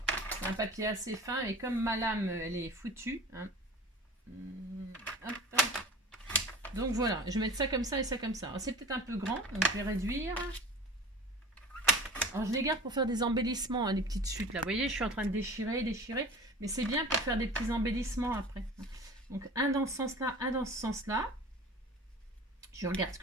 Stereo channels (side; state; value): both; normal; correlation 0.39